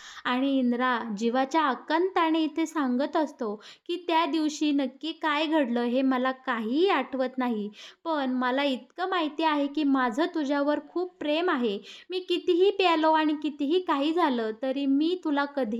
आणि इंद्रा जीवाच्या आकांताने इथे सांगत असतो की त्या दिवशी नक्की काय घडलं हे मला काहीही आठवत नाही. पण मला इतकं माहिती आहे की माझं तुझ्यावर खूप प्रेम आहे. मी कितीही प्यालो आणि कितीही काही झालं तरी मी तुला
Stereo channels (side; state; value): both; identical; correlation 1.00